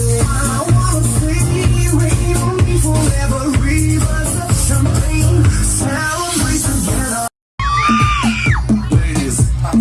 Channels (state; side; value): identical; both; correlation 1.00